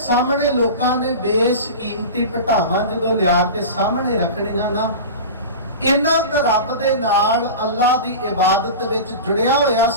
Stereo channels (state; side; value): inverted; both; correlation -0.30